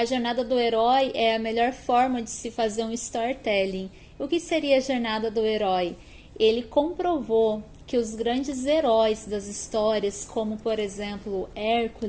Jornada do Herói é a melhor forma de se fazer um storytelling. O que seria a Jornada do Herói? Ele comprovou que os grandes heróis das histórias, como por exemplo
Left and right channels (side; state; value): both; identical; correlation 1.00